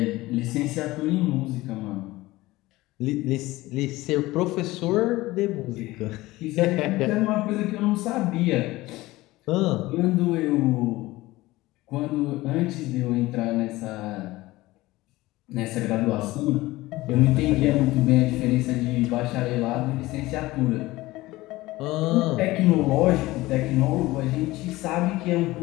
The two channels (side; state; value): right; quieter; 18.8 dB